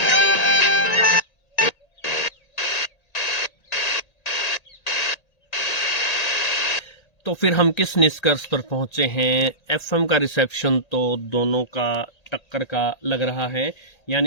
तो फिर हम किस निष्कर्ष पर पहुंचे हैं? एफएम का रिसेप्शन तो दोनों का टक्कर का लग रहा है,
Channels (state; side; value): late; right; 1.8 ms